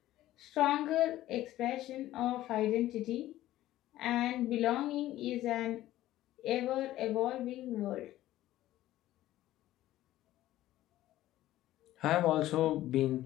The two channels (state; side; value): quieter; right; 14.7 dB